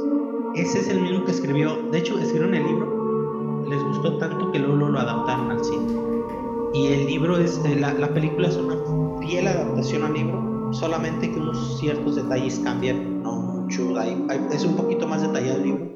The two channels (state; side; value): identical; both; correlation 1.00